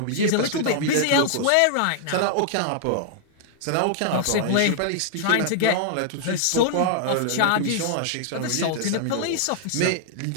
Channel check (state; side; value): different; both; correlation -0.01